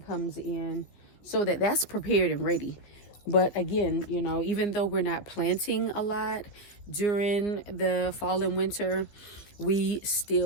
comes in so that that's prepared and ready. But again, you know, even though we're not planting a lot during the fall and winter, we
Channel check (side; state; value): right; late; 14 ms